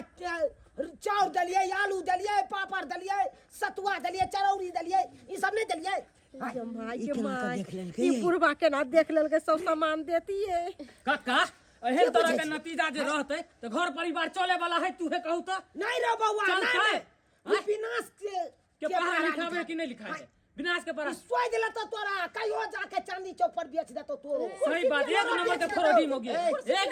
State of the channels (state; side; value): identical; both; correlation 1.00